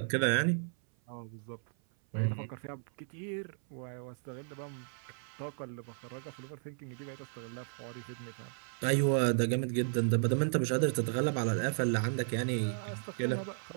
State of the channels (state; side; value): silent; left; 55 dB below the other